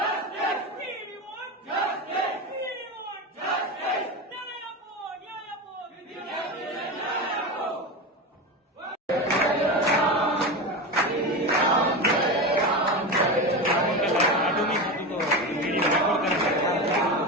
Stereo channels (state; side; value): normal; both; correlation 0.21